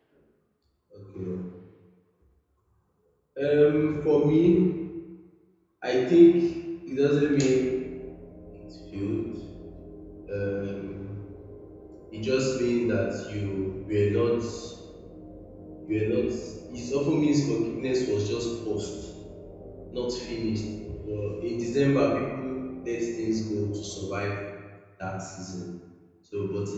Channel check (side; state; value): both; identical; correlation 1.00